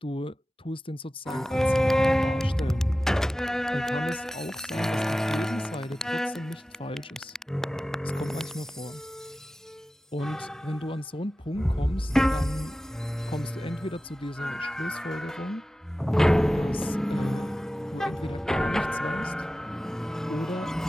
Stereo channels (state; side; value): normal; both; correlation 0.95